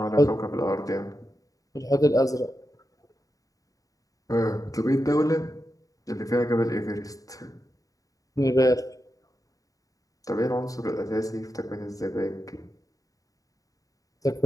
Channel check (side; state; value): right; late; 0.17 ms